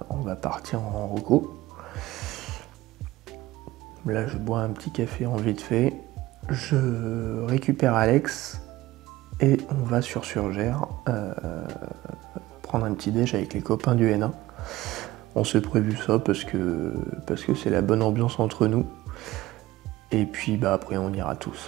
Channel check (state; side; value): quieter; left; 17.5 dB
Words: On va partir en reco. Là je bois un petit café en vite fait, je récupère Alex et on va sur Surgère prendre un petit déj avec les copains du N1. On s'est prévu ça parce que c'est la bonne ambiance entre nous. Et puis après on ira